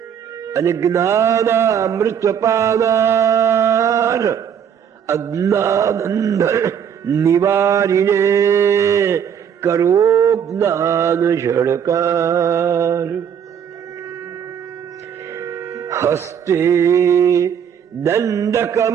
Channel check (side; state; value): left; quieter; 8.2 dB